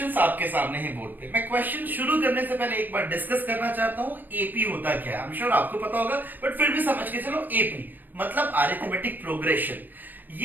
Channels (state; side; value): late; left; 0.087 ms